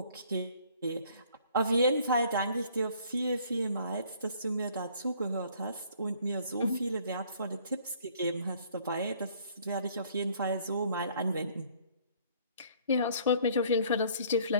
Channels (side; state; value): both; inverted; correlation -0.59